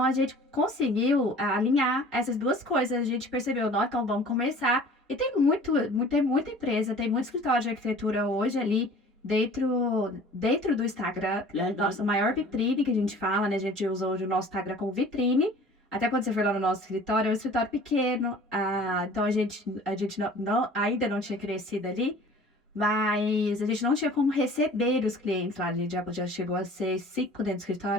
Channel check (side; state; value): both; normal; correlation 0.47